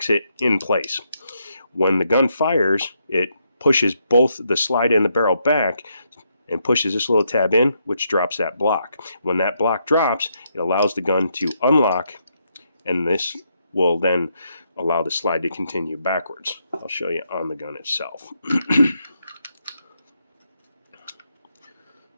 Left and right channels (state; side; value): inverted; both; correlation -0.78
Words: it in place. When the gun fires, it pushes both the slide and the barrel back and pushes this little tab in, which drops that block. When that block drops, it allows the gun to unlock, and this will then allow the slide to continue backwards. I'll show you on the gun itself.